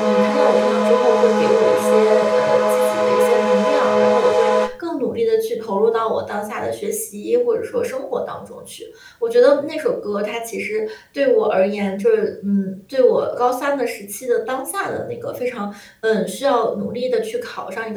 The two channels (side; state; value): both; identical; correlation 1.00